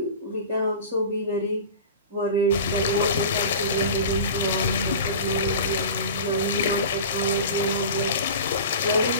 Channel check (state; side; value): inverted; both; correlation -0.34